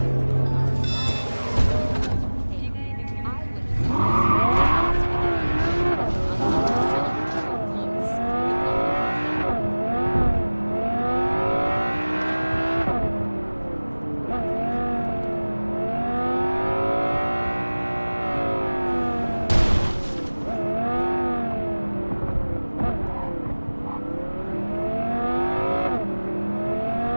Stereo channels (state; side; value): inverted; both; correlation -1.00